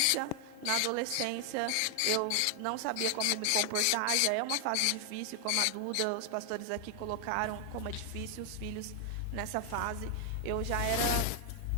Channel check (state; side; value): different; both; correlation 0.00